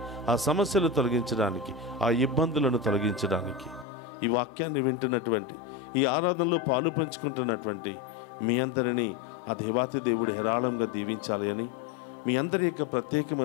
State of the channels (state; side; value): drops out; right; at 3.9 s